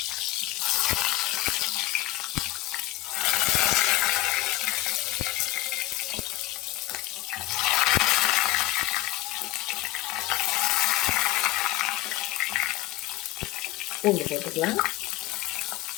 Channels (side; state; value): right; quieter; 17.4 dB